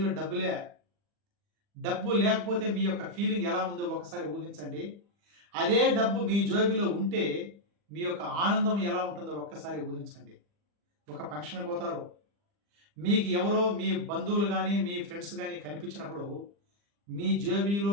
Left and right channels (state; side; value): late; left; 40 ms